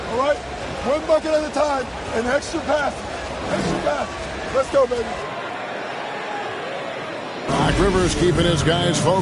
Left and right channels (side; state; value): both; identical; correlation 1.00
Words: all right? One bucket at a time, and extra pass. Extra pass. Let's go, baby. Doc Rivers keeping his guys